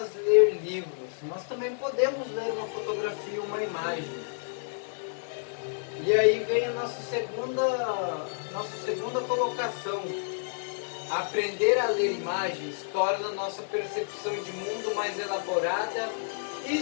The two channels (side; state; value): right; silent; digital silence